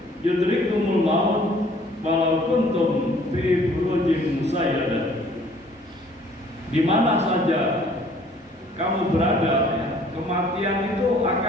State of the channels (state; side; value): normal; both; correlation 0.57